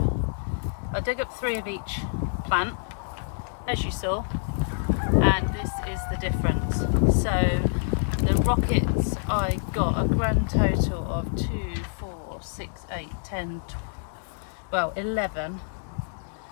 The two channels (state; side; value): silent; right; digital silence